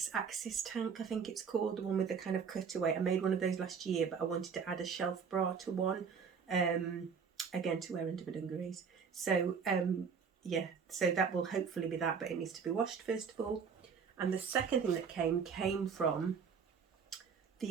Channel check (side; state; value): left; quieter; 6.2 dB